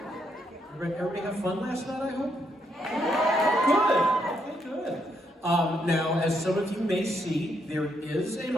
Everybody have fun last night, I hope? Good. Okay, good. Now, as some of you may see, there is a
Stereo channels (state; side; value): normal; both; correlation 0.76